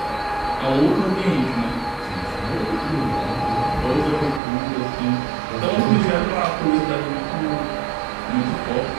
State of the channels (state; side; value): drops out; left; at 4.4 s